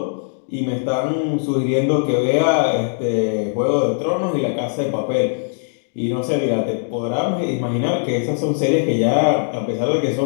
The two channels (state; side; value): silent; right; digital silence